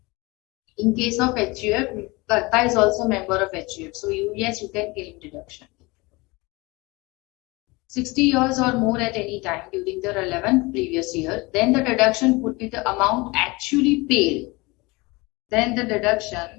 In case of HUF, Karta is also a member of HUF, so you can claim deduction. 60 years or more at any time during the relevant previous year, then the deduction would be the amount actually paid. Then the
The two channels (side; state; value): right; quieter; 24.2 dB